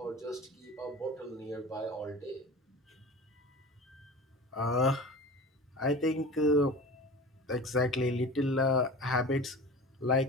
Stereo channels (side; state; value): both; normal; correlation 0.35